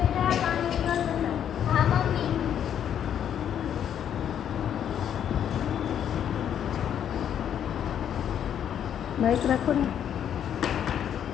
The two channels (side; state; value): right; quieter; 9.4 dB